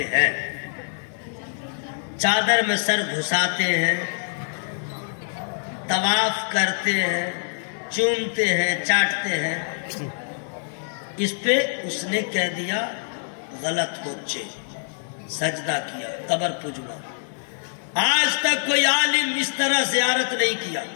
ہیں، چادر میں سر گھساتے ہیں، طواف کرتے ہیں، چومتے ہیں، چاٹتے ہیں۔ اس پہ اس نے کہہ دیا غلط بچے، سجدہ کیا، قبر پجوا۔ آج تک کوئی عالم اس طرح زیارت نہیں کیا،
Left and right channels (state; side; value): silent; right; digital silence